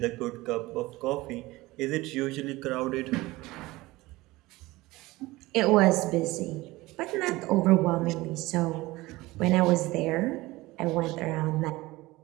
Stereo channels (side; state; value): left; quieter; 19.8 dB